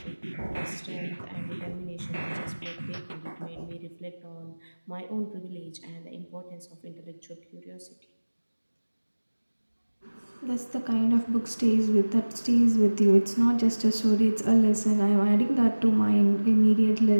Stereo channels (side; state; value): both; inverted; correlation -1.00